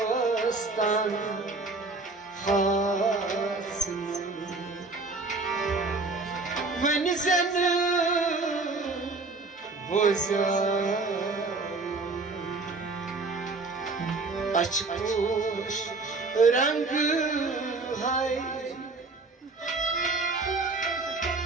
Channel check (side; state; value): left; quieter; 3.6 dB